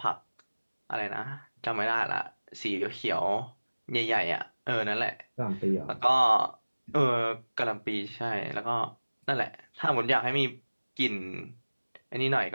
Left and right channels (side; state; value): both; inverted; correlation -1.00